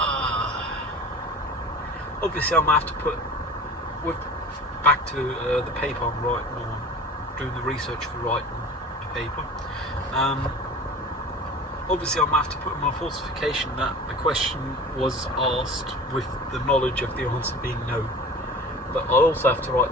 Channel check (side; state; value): both; normal; correlation 0.38